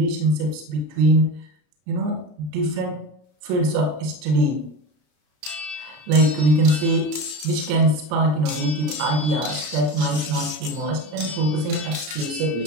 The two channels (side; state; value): left; late; 33 ms